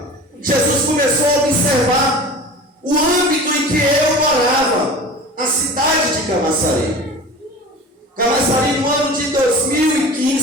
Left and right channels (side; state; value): both; normal; correlation 0.37